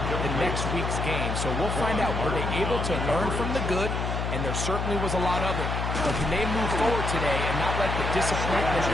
next week's game. So we'll find out, were they able to learn from the good? And there certainly was a lot of it. But can they move forward today and not let the disappointment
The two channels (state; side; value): noise; left; hum, 2 dB below the sound